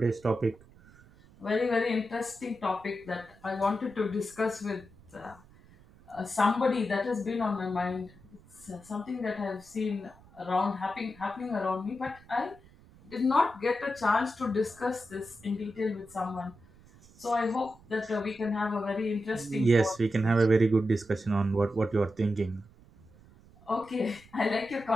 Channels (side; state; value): right; noise; rumble, 25 dB below the sound